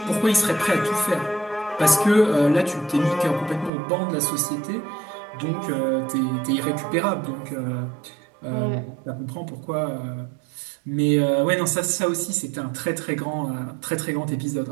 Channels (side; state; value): left; drops out; at 3.7 s